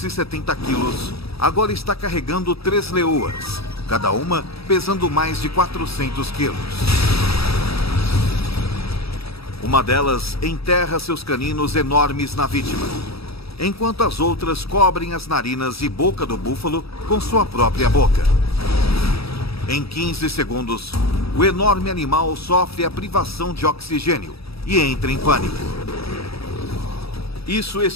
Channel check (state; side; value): late; right; 0.77 ms